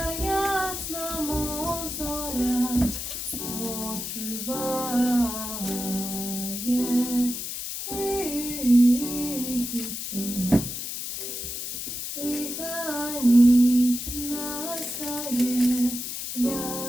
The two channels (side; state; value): left; noise; hiss, 5 dB below the sound